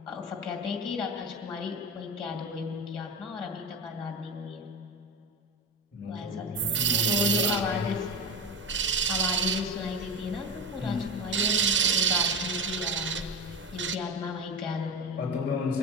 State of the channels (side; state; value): both; normal; correlation 0.21